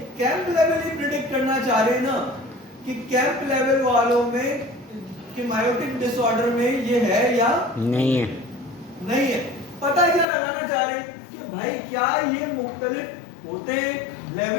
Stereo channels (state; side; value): drops out; right; at 10.2 s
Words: कैंप लेवल ही प्रिडिक्ट करना चाह रहे हैं ना कि कैंप लेवल वालों में कि मायोटिक डिसऑर्डर में ये है या नहीं है। पता क्या लगाना चाह रहे हैं कि भाई क्या ये मुख्तलिफ होते हैं